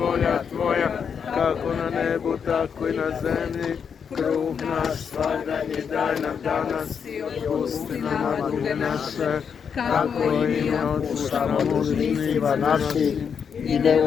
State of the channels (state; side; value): quieter; right; 6.9 dB